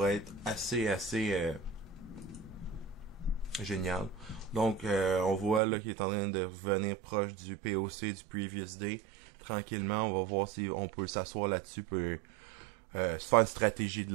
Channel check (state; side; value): drops out; left; at 5.6 s